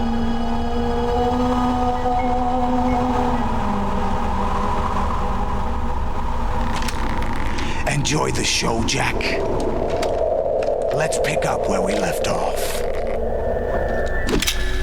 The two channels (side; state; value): both; identical; correlation 1.00